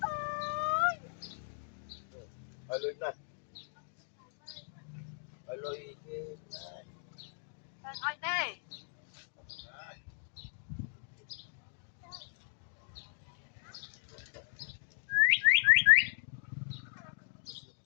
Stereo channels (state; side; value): silent; right; digital silence